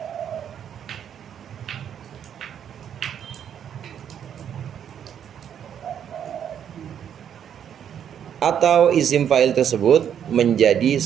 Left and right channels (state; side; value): quieter; left; 8.9 dB